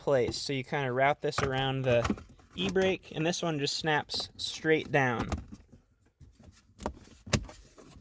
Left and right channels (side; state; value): both; identical; correlation 1.00